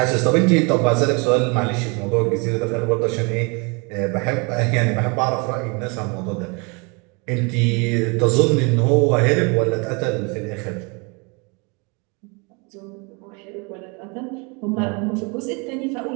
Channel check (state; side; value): quieter; left; 30.9 dB